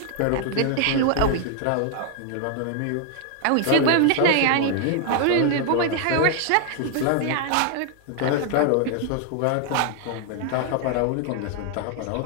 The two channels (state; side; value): different; both; correlation 0.00